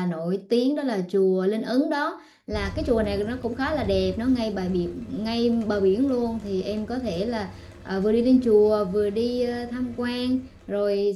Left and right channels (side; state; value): both; identical; correlation 1.00